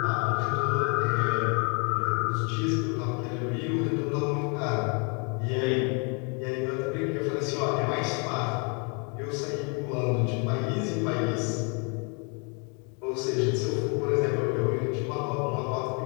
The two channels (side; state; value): right; quieter; 35.3 dB